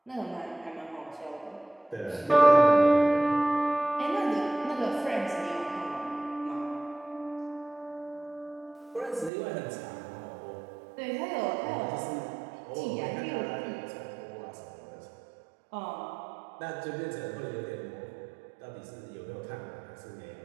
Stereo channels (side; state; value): left; drops out; at 9.3 s